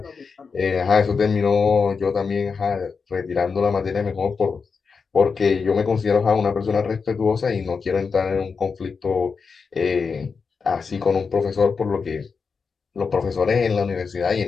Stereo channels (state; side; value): quieter; right; 5.3 dB